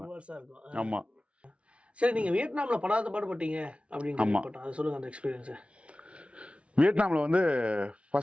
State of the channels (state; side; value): late; left; 0.061 ms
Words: ஆமா. சரி, நீங்க வியட்நாம்ல படாத பாடுபட்டீங்க அப்படின்னு கேள்விப்பட்டேன். அது சொல்லுங்க அந்த எக்ஸ்பீரியன்ஸ். வியட்நாம்ல வந்து